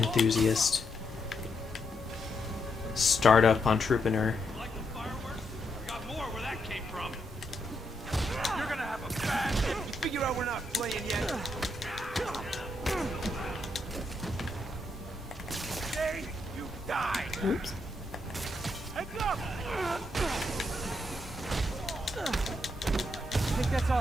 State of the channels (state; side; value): normal; both; correlation 0.80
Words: startup entrepreneur. Like the fireworks? I got more where that came from. You're gonna have a bad. You figure out we're not playing yet. Today, you die. Oops. Heads up! I think that's all